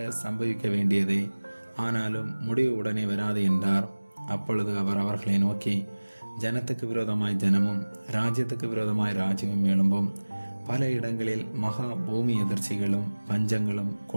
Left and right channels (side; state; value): both; inverted; correlation -1.00